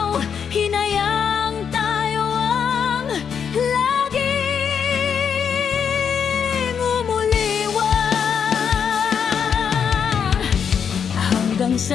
hinayang tayo ang laging umuliwan, hanggang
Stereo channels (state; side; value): quieter; right; 7.2 dB